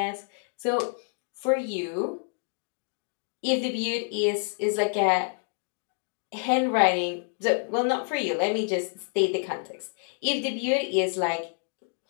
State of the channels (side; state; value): right; silent; 59 dB below the other